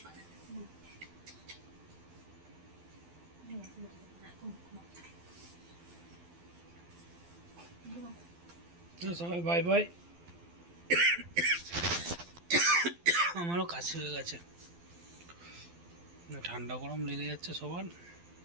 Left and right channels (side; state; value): left; late; 12 ms